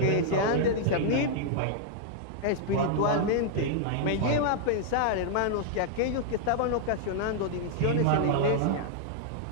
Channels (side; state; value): both; different; correlation 0.00